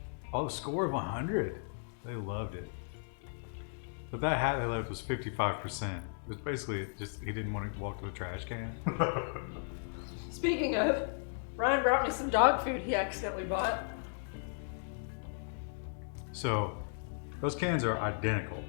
Oh, a score of 100. They loved it. But that hat they left was 55%. It was basically just, he didn't want to walk to a trash can. Speaking of, Ryan brought me some dog food he accidentally bought. So, those cans are identical.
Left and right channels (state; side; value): silent; right; digital silence